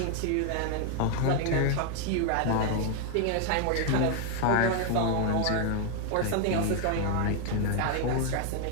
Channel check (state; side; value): different; both; correlation 0.00